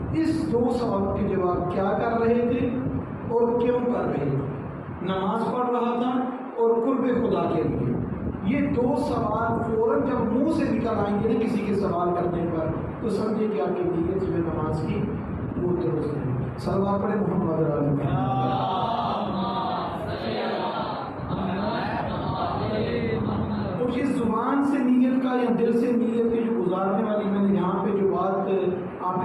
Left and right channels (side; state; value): both; identical; correlation 1.00